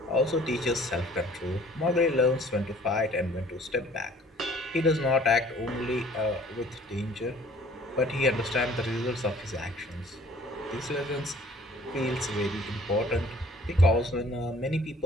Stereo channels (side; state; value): both; normal; correlation 0.54